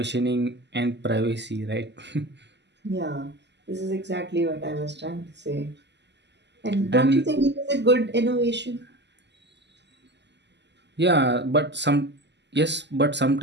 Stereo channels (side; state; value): left; late; 0.50 ms